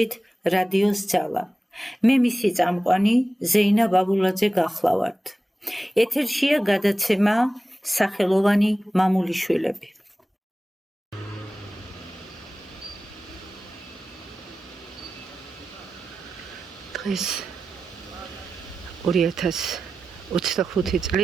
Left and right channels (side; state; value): both; normal; correlation 0.95